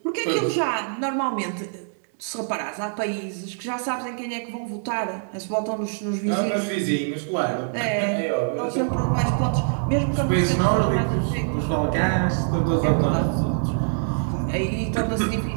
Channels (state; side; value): silent; left; digital silence